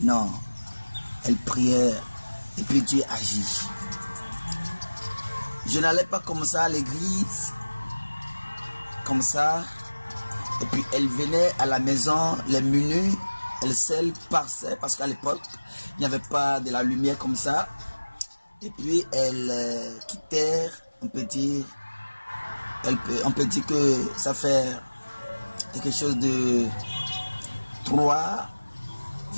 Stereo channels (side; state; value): both; inverted; correlation -1.00